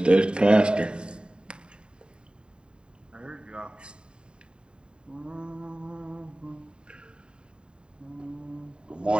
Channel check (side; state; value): left; late; 0.050 ms